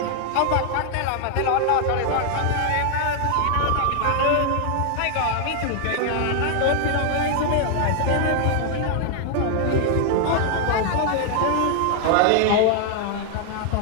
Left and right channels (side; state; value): both; different; correlation 0.00